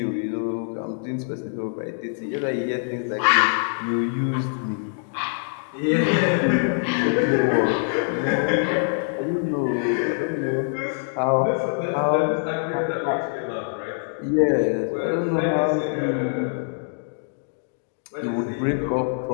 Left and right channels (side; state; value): right; silent; digital silence